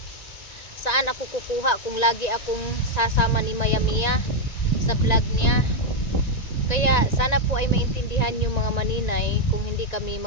Saan ako kukuha kung lagi akong sasama ni Maya Mia sa vlog niya? Kaya sana po ay maintindihan yung mga maninay, kung hindi kami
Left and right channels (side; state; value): right; late; 1.9 ms